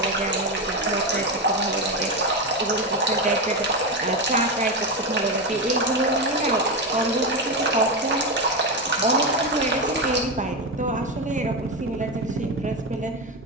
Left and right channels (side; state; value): both; normal; correlation 0.13